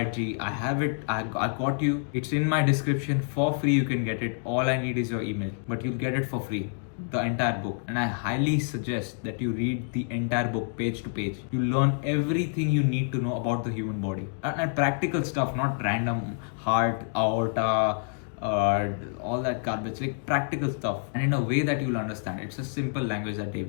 it, G. I have it. I got you. It's in my description for free. You can get it. All I need is your email, but you'll get it for free. The entire book, and I highly suggest that you read the entire book page to page. You learn everything you need to know about the human body and practical stuff, not random heart, aorta, all that garbage, like practical stuff, and in a way that you'll understand. It's a simple language that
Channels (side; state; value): right; silent; 60 dB below the other